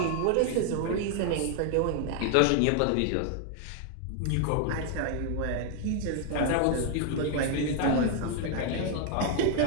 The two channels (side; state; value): both; different; correlation 0.00